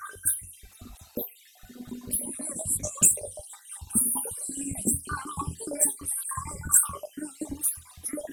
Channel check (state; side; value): identical; both; correlation 1.00